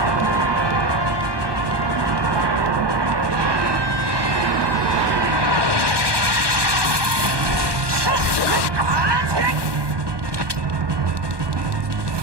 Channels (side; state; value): left; late; 1.2 ms